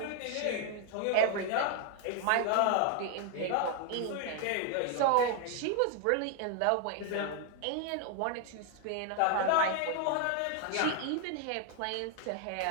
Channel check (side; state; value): both; different; correlation 0.00